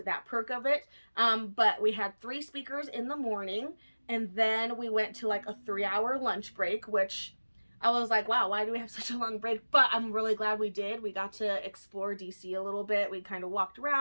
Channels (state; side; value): inverted; both; correlation -1.00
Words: that perk of it. But we had 3 speakers in the morning, and then we went to like a 3-hour lunch break, which I was like, wow, why do we have such a long break? But I'm really glad we did. We got to explore DC a little bit. We kind of walked